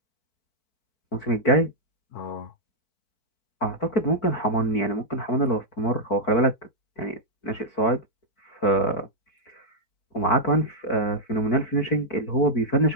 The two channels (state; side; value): late; right; 4.5 ms